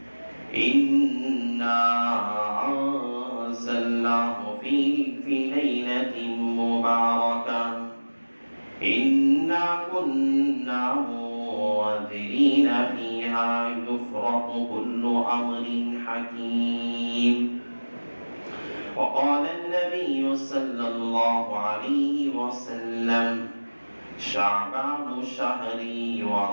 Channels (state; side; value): inverted; both; correlation -1.00